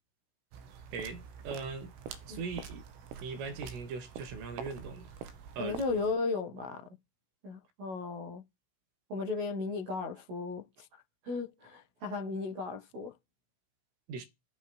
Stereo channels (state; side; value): late; left; 16 ms